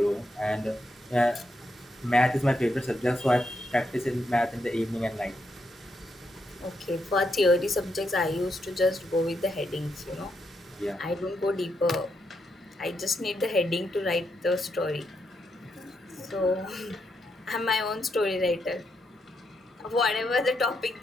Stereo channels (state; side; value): normal; both; correlation 0.81